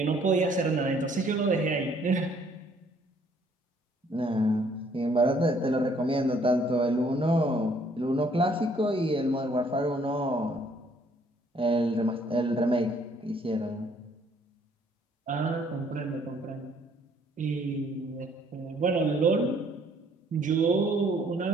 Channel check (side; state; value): both; normal; correlation 0.63